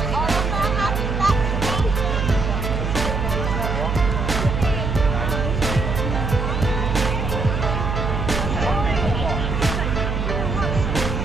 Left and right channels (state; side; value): noise; right; hum, 1 dB below the sound